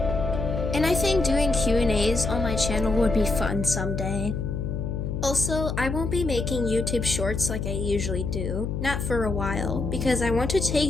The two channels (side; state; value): left; noise; hum, 3 dB below the sound